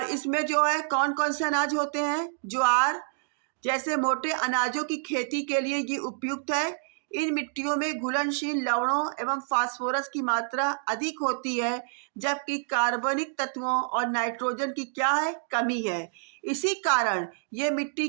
इसमें जो है कौन कौन से अनाज होते हैं, ज्वार जैसे मोटे अनाजों की खेती के लिए ये उपयुक्त है। इन मिट्टियों में घुलनशील लवणों एवं फास्फोरस की मात्रा अधिक होती है, जबकि कार्बनिक तत्वों और नाइट्रोजन की क्या है, कमी है। इसी कारण ये मिट्टी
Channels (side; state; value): left; silent; digital silence